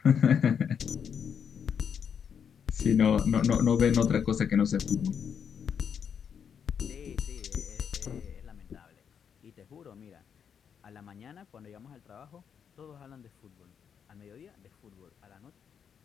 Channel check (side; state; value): right; quieter; 7.5 dB